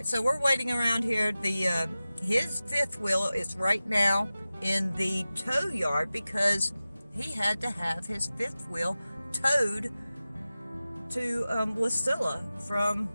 so we're waiting around here. His fifth wheel is right now in the tow yard because he had to have his fifth wheel towed to Wasilla from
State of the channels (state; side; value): inverted; both; correlation -0.96